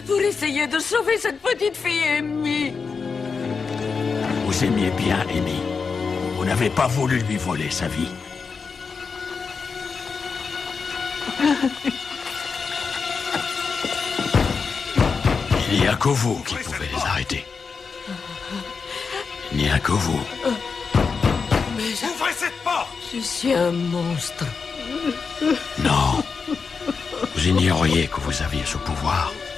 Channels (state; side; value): quieter; right; 5.3 dB